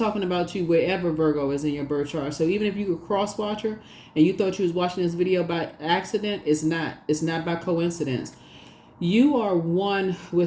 about you wherever Virgo is in your birth chart. So even if you were a cross watcher and you thought you was watching this video by accident, it's not. It's not by coincidence. You are one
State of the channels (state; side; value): identical; both; correlation 1.00